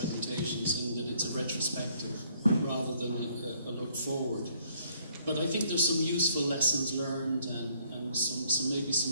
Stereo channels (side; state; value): both; inverted; correlation -0.65